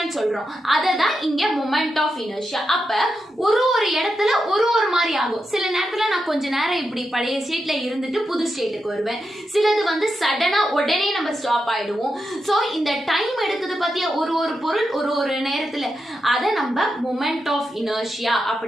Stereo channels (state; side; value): normal; both; correlation 0.87